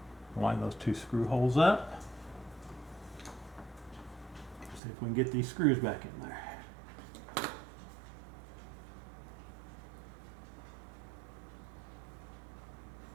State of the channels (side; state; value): left; drops out; at 4.8 s